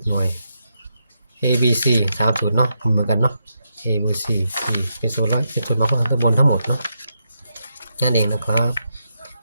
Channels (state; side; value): inverted; both; correlation -0.83